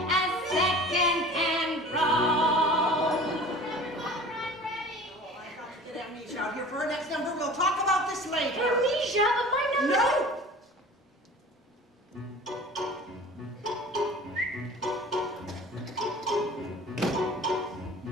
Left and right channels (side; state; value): both; normal; correlation 0.41